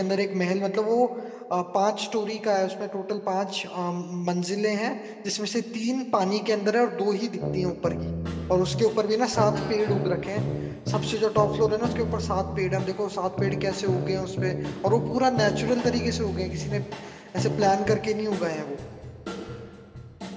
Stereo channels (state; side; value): identical; both; correlation 1.00